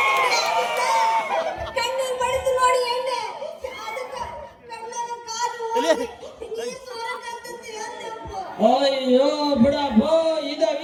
ಕಣ್ಣೀರ್ ಬಡಿದು ನೋಡಿ ಎಣ್ಣೆ ಅಯ್ಯೋ ಬಿಡಪ್ಪೋ ಇದ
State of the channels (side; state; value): both; identical; correlation 1.00